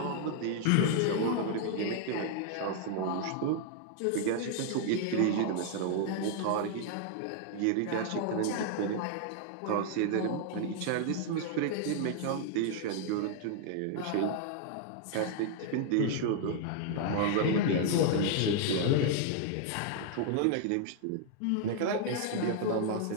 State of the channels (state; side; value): different; both; correlation 0.00